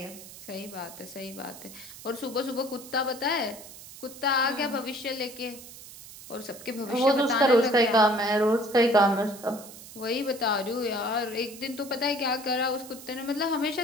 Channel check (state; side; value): noise; right; hiss, 16 dB below the sound